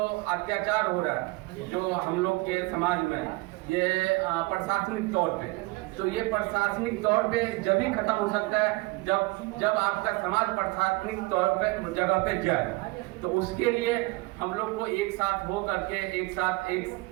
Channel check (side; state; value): left; quieter; 23.2 dB